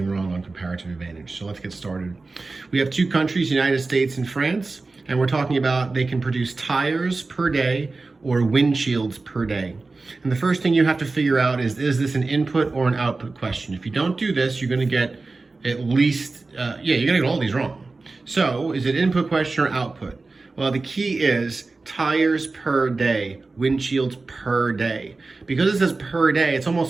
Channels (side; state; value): left; quieter; 3.6 dB